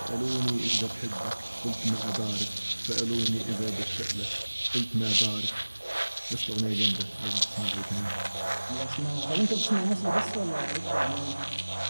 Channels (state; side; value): inverted; both; correlation -1.00